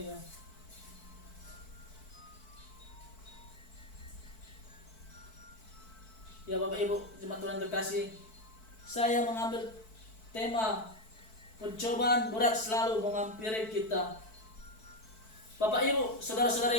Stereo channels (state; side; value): late; right; 4.6 ms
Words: Ya Bapak Ibu jemaat Tuhan terkasih, saya mengambil tema pencobaan berat selalu menghampiri kita. Bapak Ibu,